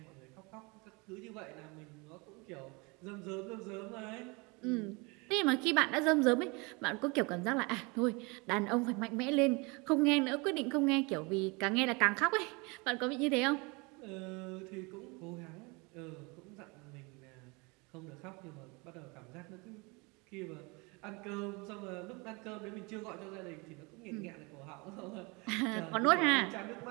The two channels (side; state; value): left; quieter; 28.1 dB